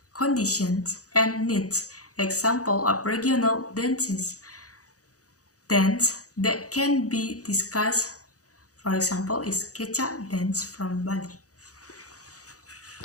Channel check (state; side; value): late; right; 0.66 ms